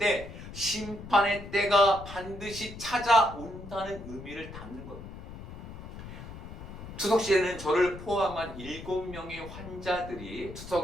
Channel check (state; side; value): noise; left; rumble, 12 dB below the sound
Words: 심판의 때가 반드시 찾아온다는 의미를 담는 겁니다. 추석 시에는 저를 포함한 7명의 환자들이